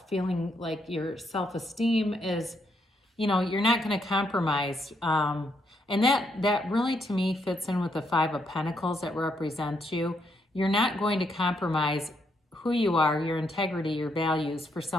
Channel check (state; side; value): normal; both; correlation 0.76